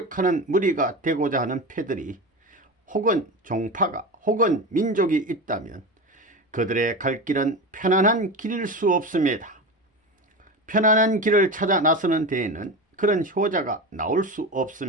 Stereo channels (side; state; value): both; normal; correlation 0.24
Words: 무리가 되고자 하는 패들이 혹은 종파가 혹은 민족이 있다면 그들의 갈 길은 편안한 길일 수 없습니다. 편안한 길을 찾아 나서는 데에는 그런 효자가 나올 수